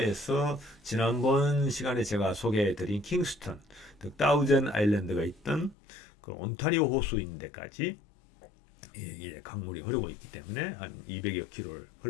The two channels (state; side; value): drops out; right; at 5.8 s